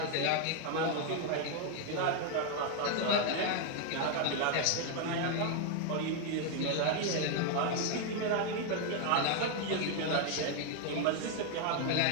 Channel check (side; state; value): both; different; correlation 0.00